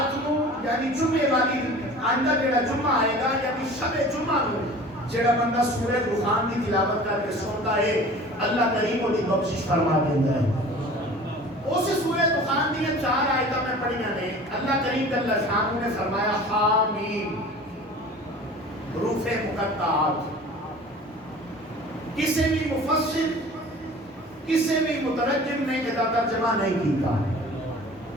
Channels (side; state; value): both; normal; correlation 0.42